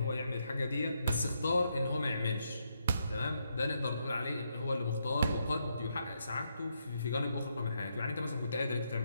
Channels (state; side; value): inverted; both; correlation -0.79